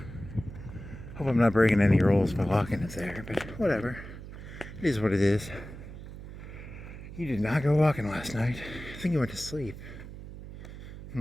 Hope I'm not breaking any rules by walking it there, but whatever. It is what it is. You did not go walking last night. I think you went to sleep.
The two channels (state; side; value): noise; right; hum, 12 dB below the sound